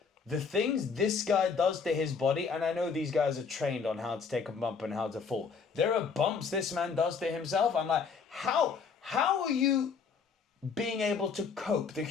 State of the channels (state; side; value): quieter; right; 5.6 dB